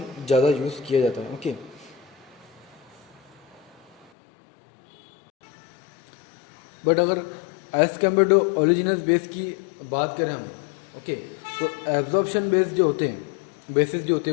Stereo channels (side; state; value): right; drops out; at 4.1 s